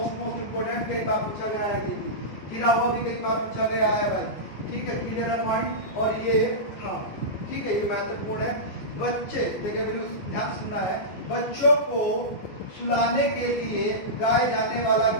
इंपोर्टेंट, कई बार पूछा गया है, ये गिरा हुआ भी कई बार पूछा गया है भाई। ठीक है, क्लियर है पॉइंट। और ये हाँ ठीक है, ये महत्वपूर्ण है। बच्चे देखिए, बिल्कुल ध्यान सुनना है। बच्चों को सुलाने के लिए गाए जाने वाला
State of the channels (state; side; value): late; right; 14 ms